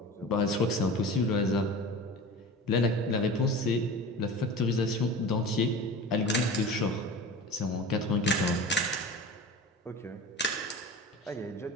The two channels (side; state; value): both; normal; correlation 0.34